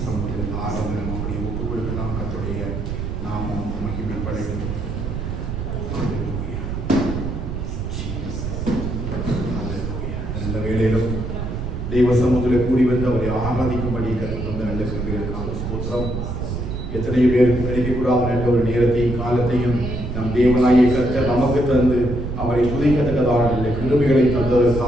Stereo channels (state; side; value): noise; right; rumble, 4 dB below the sound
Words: சமுத்திரத்தில் ஆரம்பம் அப்படியே ஒப்பு கொடுக்கலாம். கத்துடைய நாமம் மகிமைப்படையும். நல்ல வேளையிலும் தெய்வ சமூகத்தில் கூடி வந்து அவரை ஆராதிக்கும்படி கற்றுக் வந்த நல்ல கிருபைகளுக்காக ஸ்தோத்திரம். எத்தனை பேருக்கு கிடைக்கக்கூடாத நல்ல ஒரு நேரத்தையும் காலத்தையும் நம் தேவனாகிய கர்த்தர் நமக்கு தந்து அவரை துதிக்கத்தக்கதான நல்ல கிருபைகளை